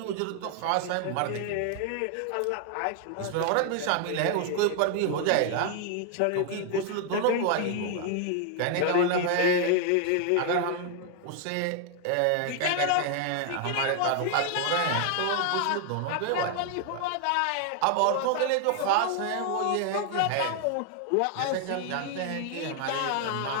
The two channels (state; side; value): different; both; correlation 0.00